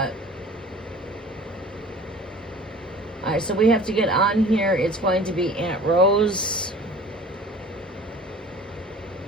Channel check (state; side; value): normal; both; correlation 0.45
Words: right, so we have to get on here. It's going to be Aunt Rose,